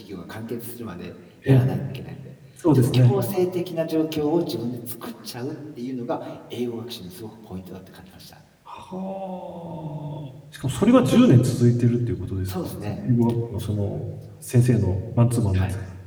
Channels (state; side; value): identical; both; correlation 1.00